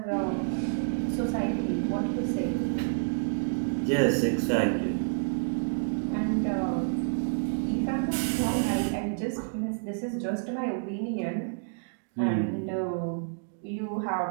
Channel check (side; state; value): left; silent; digital silence